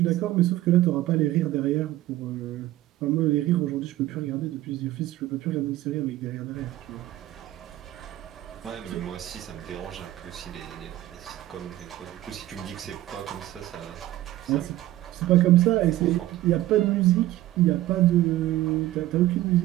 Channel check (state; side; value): quieter; left; 15.3 dB